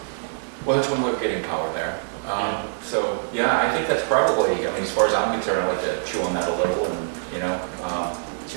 Well, that's one way of getting power there. So, yeah, I think that's probably, I mean, as far as I'm concerned, I'd like to chew on that a little and, you know,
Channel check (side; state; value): left; silent; digital silence